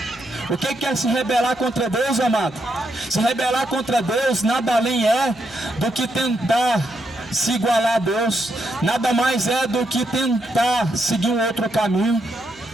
O que é se rebelar contra Deus, amado? Se rebelar contra Deus nada além é do que tentar se igualar a Deus. Nada mais é do que tentar seguir um outro caminho.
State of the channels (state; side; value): noise; right; hum, 27 dB below the sound